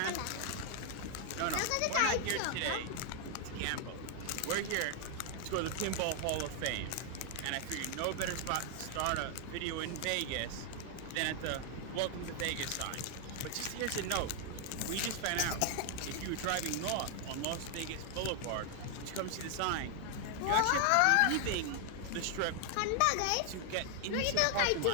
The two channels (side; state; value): both; different; correlation 0.00